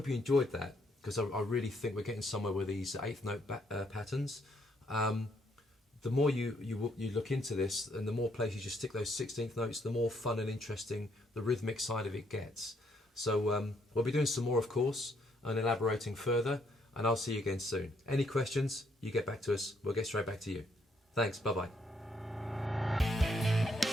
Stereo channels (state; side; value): normal; both; correlation 0.71